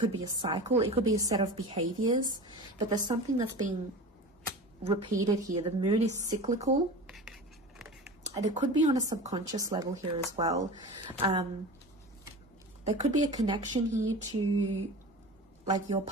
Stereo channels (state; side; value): normal; both; correlation 0.32